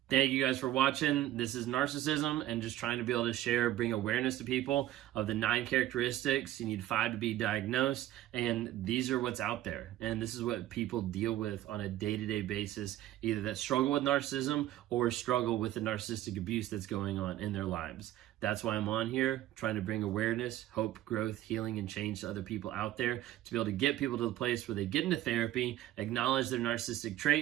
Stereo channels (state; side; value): quieter; left; 14.0 dB